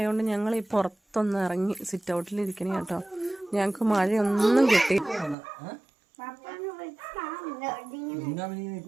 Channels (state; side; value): drops out; left; at 5.4 s